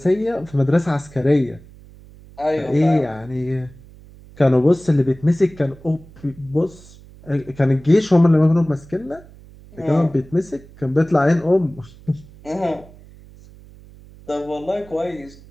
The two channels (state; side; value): noise; right; hum, 22 dB below the sound